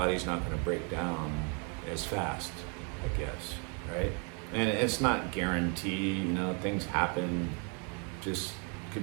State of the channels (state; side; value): quieter; left; 36.5 dB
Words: not going to break down as fast, I guess, right? And it's not guaranteed, you know, things happen, just